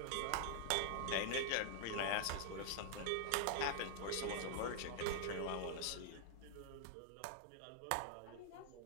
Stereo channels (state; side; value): different; both; correlation 0.00